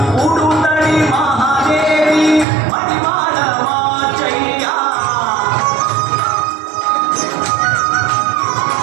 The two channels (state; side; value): drops out; left; at 2.5 s